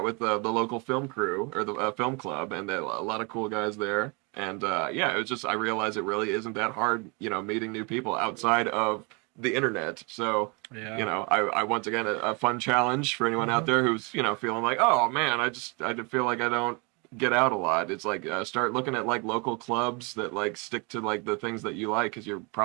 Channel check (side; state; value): left; quieter; 31.1 dB